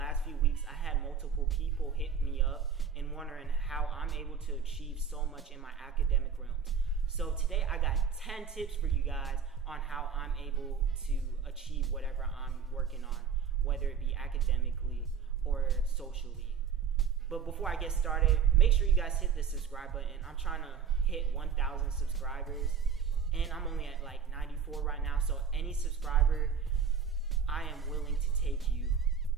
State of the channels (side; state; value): left; quieter; 6.7 dB